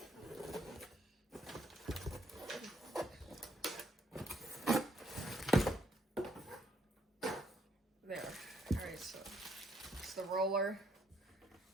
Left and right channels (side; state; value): both; normal; correlation 0.71